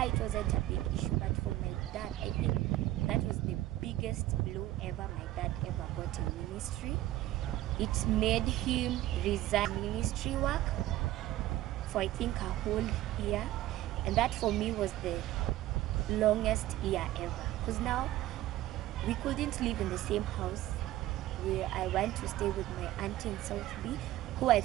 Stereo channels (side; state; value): left; quieter; 15.1 dB